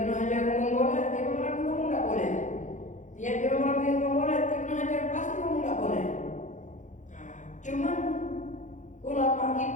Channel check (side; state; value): right; late; 0.36 ms